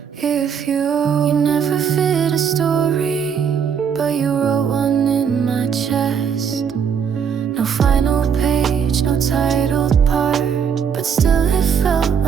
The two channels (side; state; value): left; quieter; 7.3 dB